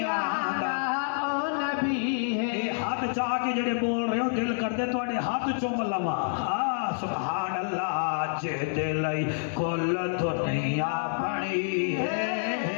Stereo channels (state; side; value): silent; right; 59 dB below the other